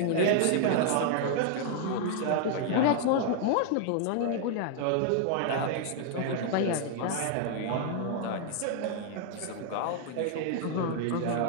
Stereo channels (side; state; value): both; different; correlation -0.01